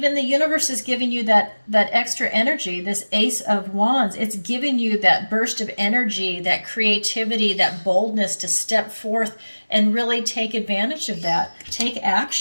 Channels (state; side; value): inverted; both; correlation -1.00